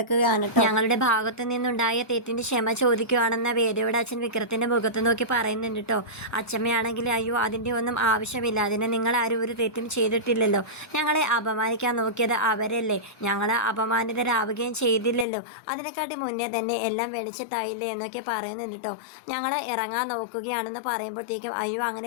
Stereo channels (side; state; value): right; drops out; at 15.2 s